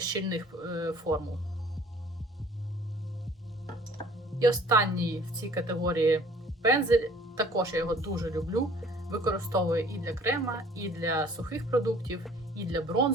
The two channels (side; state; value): both; normal; correlation 0.53